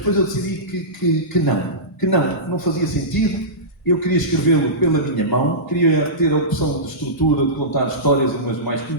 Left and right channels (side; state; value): both; normal; correlation -0.18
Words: eu decidi que não fazia sentido. Eu queria escrevê-lo pela minha mão, queria ter a opção de estrutura, de contar histórias, umas mais